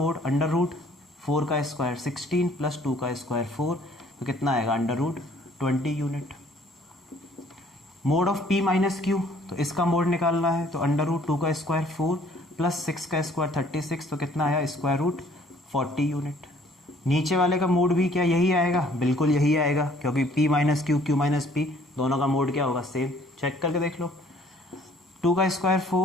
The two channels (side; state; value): both; normal; correlation 0.58